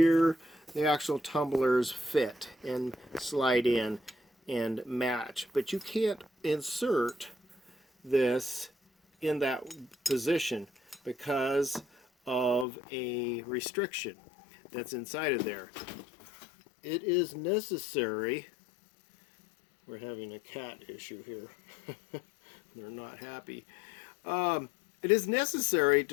the actual tumblers fit and slide in and match. But you can't insert this in that position because of a restriction that's inside of there. It is necessary. We're having a cat issue here. They're not happy. It is necessary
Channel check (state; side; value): drops out; right; at 12.7 s